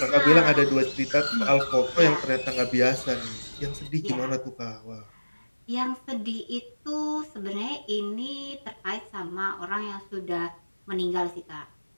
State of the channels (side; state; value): both; inverted; correlation -1.00